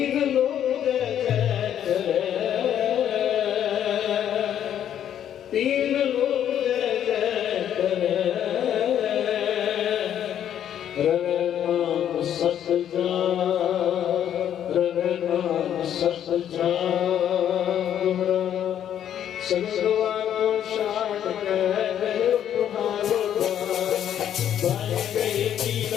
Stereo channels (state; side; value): quieter; right; 10.1 dB